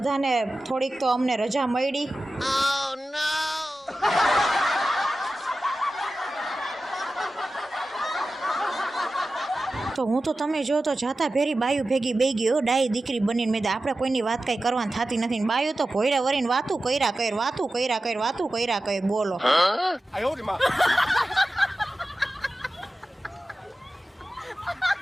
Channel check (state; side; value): normal; both; correlation 0.94